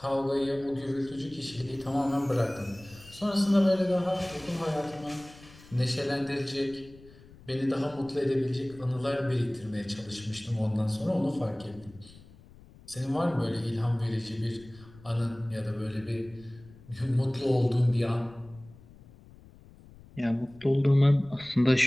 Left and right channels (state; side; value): noise; left; rumble, 22 dB below the sound